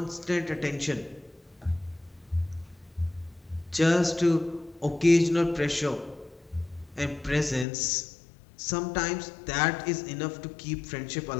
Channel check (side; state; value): right; drops out; at 7.7 s